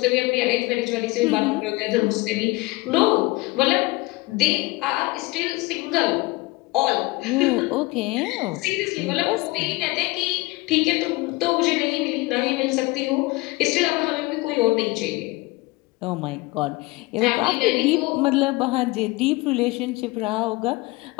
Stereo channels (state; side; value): quieter; right; 22.3 dB